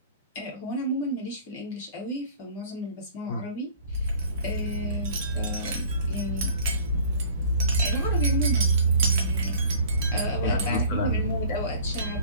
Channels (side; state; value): both; inverted; correlation -0.48